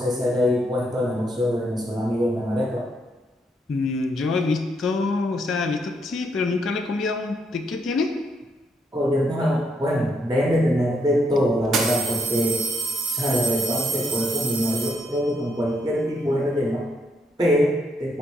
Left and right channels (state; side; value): normal; both; correlation 0.76